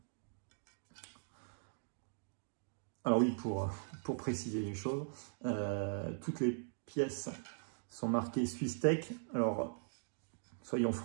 Alors oui, pour préciser les choses, toutes les pièces sont marquées SwissTech. Alors, soyons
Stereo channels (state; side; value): silent; left; digital silence